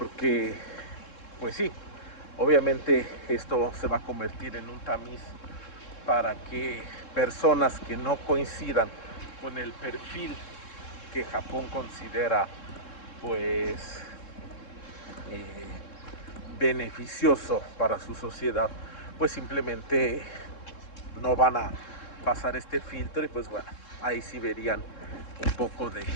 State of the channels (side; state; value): right; late; 3.7 ms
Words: pues sí, obviamente esto se va a convertir en un tamiz para que personas que no coincidan con el perfil que Japón considera pues eh, beneficioso para su sociedad, pues simplemente no van a pasar este filtro, y pues bueno, ahí sí verían un poco de